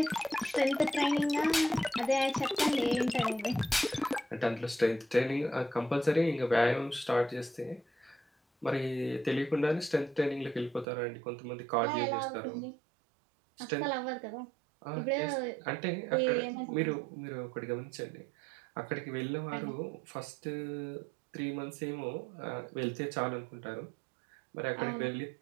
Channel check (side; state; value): left; drops out; at 10.9 s